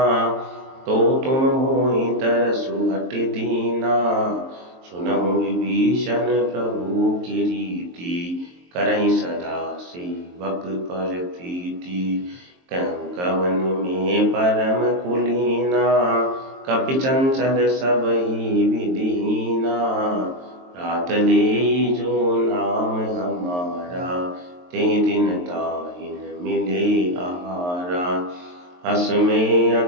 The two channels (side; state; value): left; late; 23 ms